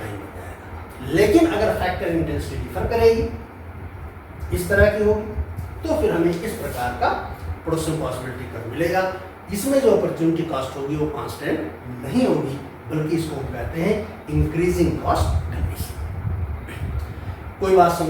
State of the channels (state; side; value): identical; both; correlation 1.00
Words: हो जाएगा। लेकिन अगर फैक्टर इंटेंसिटी डिफर करेगी, इस तरह की होगी, तो फिर हमें इस प्रकार का प्रोडक्शन पॉसिबिलिटी कर मिलेगा। इसमें जो अपॉर्चुनिटी कॉस्ट होगी वो कांस्टेंट नहीं होगी, बल्कि इसको हम कहते हैं इंक्रीजिंग कॉस्ट कंडीशन। कोई बात